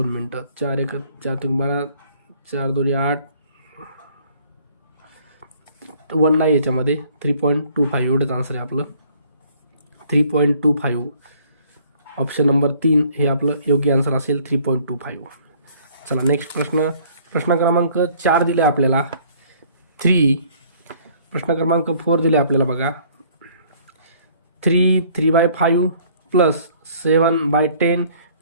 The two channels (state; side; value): inverted; both; correlation -0.58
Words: मिनटं. 4 1 4 3 12, 4 2 8, 1 नाही याच्यामध्ये. 3.25 एवढंच आन्सर आहे आपलं. 3.25. ऑप्शन नंबर 3 हे आपलं योग्य आन्सर असेल. 3.25. चला नेक्स्ट प्रश्न क्रमांक 4 दिले आपल्याला 3. प्रश्न क्रमांक 4 दिले आपल्याला बघा 3/5 प्लस 7/10